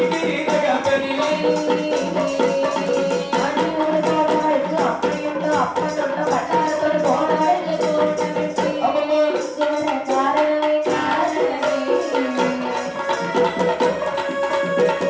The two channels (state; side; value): identical; both; correlation 1.00